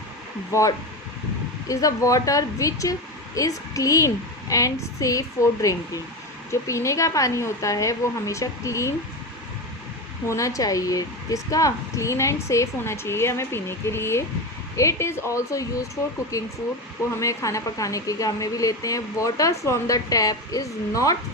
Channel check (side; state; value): both; normal; correlation 0.19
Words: the water which is clean and safe for drinking, जो पीने का पानी होता है वो हमेशा क्लीन होना चाहिए, जिसका क्लीन एंड सेफ होना चाहिए हमें पीने के लिए। It is also use for cooking food, वो हमें खाना पकाने के काम में भी लेते हैं। Water from the tap is not